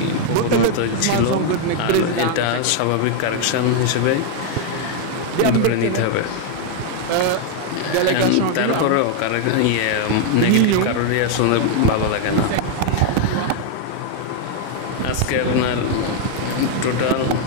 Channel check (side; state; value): both; different; correlation 0.00